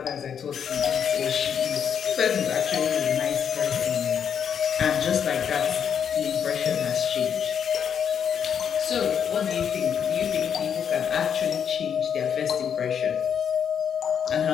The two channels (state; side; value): quieter; right; 7.8 dB